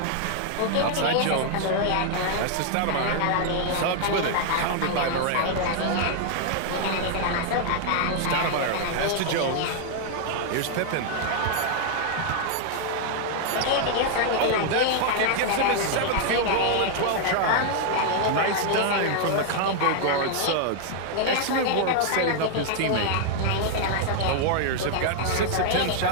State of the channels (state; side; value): different; both; correlation 0.00